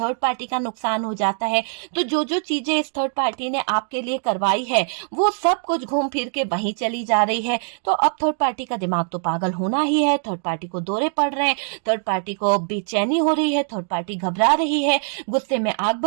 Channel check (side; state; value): left; silent; digital silence